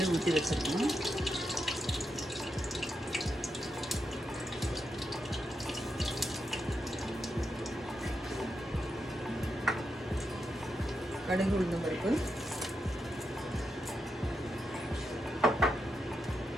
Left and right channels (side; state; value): both; normal; correlation 0.85